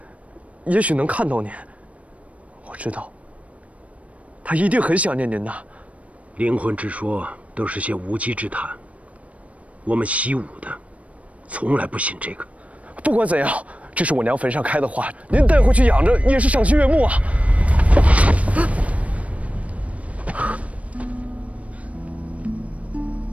也许能看到您。我知道，他一定很想念您的。灵魂之说都是些无稽之谈，我们习武的，从来不信这个。不管怎样，这是我娘坟上开的花，您带回去养着也是赏心悦目啊。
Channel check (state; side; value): late; left; 0.066 ms